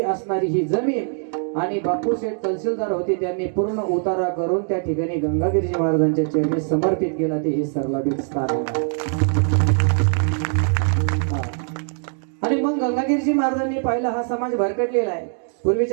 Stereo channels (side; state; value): left; silent; 56 dB below the other